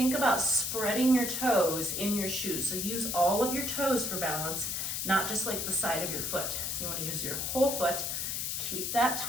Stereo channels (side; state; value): left; noise; hiss, 2 dB below the sound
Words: about spreading your toes in your shoes. So use all of your toes for balance, not just like the side of your foot. So you want to use your whole foot, keep that